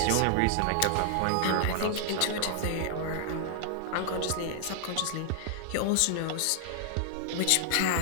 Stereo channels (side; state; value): both; different; correlation 0.00